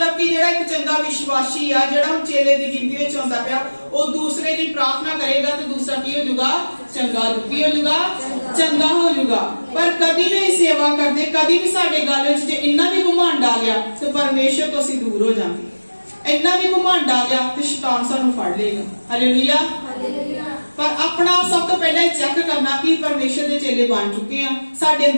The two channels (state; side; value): inverted; both; correlation -1.00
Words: ਕਿ ਜਿਹੜਾ ਇੱਕ ਚੰਗਾ ਵਿਸ਼ਵਾਸੀ ਆ, ਜਿਹੜਾ ਹੁਣ ਚੇਲੇ ਦੀ ਗਿਣਤੀ ਵਿੱਚ ਆਉਂਦਾ ਪਿਆ, ਉਹ ਦੂਸਰੇ ਦੀ ਪ੍ਰਾਰਥਨਾ ਕਰੇਗਾ ਤੇ ਦੂਸਰਾ ਕੀ ਹੋ ਜਾਊਗਾ? ਚੰਗਾ ਹੋ ਜਾਊਗਾ। ਪਰ ਕਦੀ ਵੀ ਸੇਵਾ ਕਰਦੇ, ਕਦੀ ਵੀ ਸਾਡੇ ਗੱਲ ਵਿੱਚ ਜੇ ਇੰਨਾ ਵੀ ਘਮੰਡ ਆ ਗਿਆ ਤੇ ਪਰਮੇਸ਼ਰ ਤੋਂ ਅਸੀਂ ਦੂਰ ਹੋ ਜਾਵਾਂਗੇ। ਇੰਨਾ ਵੀ ਘਮੰਡ ਆ ਗਿਆ ਤੇ ਸ਼ੈਤਾਨ ਸਾਨੂੰ ਫੜ ਲਏਗਾ। ਹਾਲੇਲੂਇਆ। ਪਰ ਆਪਣਾ ਸਭ ਤੋਂ ਪਹਿਲਾਂ ਚੈੱਕ ਕਰਨਾ ਕਿ ਪਰਮੇਸ਼ਰ ਦੇ ਚੇਲੇ ਬਣ ਚੁੱਕੇ ਆ, ਸਾਡੇ